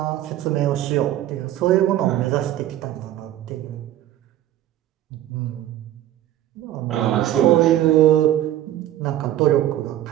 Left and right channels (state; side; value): quieter; left; 13.1 dB